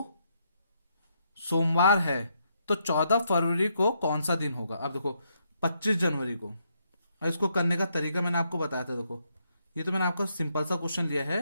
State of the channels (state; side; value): inverted; both; correlation -0.77